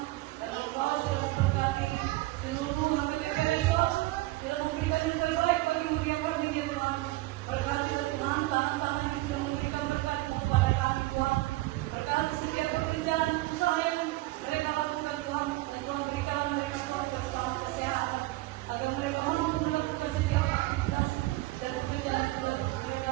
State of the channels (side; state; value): left; quieter; 19.5 dB